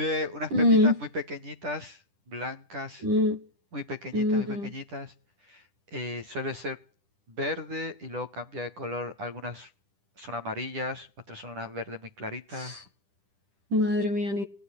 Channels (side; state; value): left; late; 10 ms